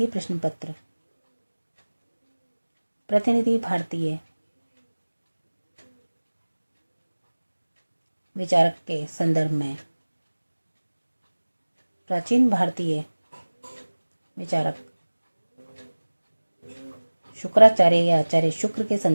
प्रश्न पत्र प्रतिनिधि भारतीय विचारक के संदर्भ में प्राचीन भारतीय विचारक शुक्राचार्य या आचार्य शुक्र के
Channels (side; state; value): both; inverted; correlation -1.00